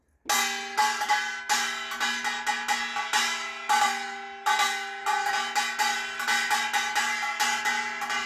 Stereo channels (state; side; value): identical; both; correlation 1.00